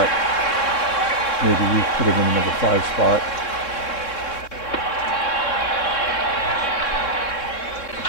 Maybe we put him in the number 5 spot.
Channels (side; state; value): right; late; 3.6 ms